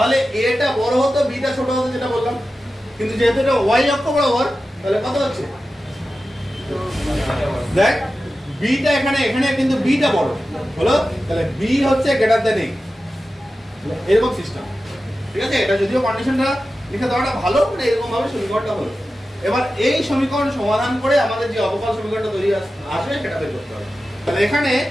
a টা বড় হতো b টা ছোট হতো যেটা বললাম, কিন্তু যেহেতু এটা y অক্ষ বরাবর তাহলে কত হচ্ছে দেখ b টা এখানে কিন্তু b টা বড় হলো, তাহলে b হচ্ছে গ্রেটার দ্যান a এরকম সিস্টেম। ঠিক আছে, এটা যদিও কন্ডিশনটা লিখে দেওয়াটা ভালো মানে এরকম ভাবে সমীকরণটা হলো। এবার এই সমীকরণ সমাধান করে আমাদের যে অবকল সমীকরণটা তৈরি আসবে সেটা বের করতে হবে। তাহলে এখানে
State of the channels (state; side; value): normal; both; correlation 0.93